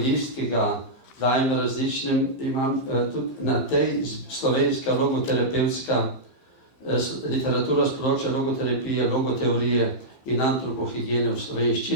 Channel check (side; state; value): right; late; 15 ms